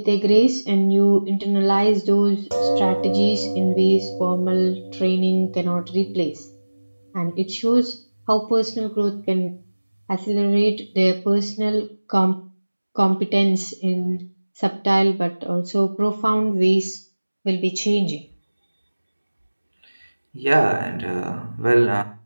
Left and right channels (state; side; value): inverted; both; correlation -1.00